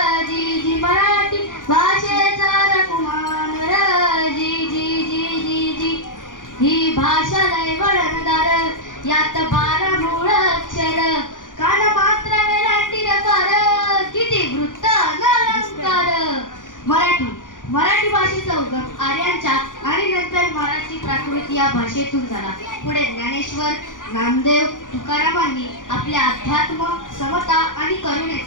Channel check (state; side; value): late; right; 0.88 ms